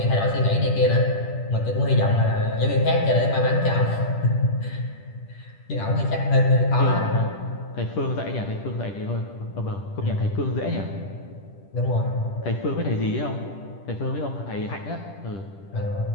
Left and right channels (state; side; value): late; right; 10 ms